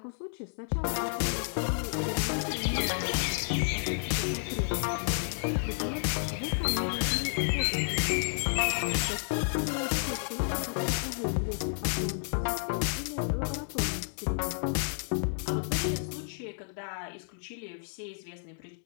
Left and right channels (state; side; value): silent; right; digital silence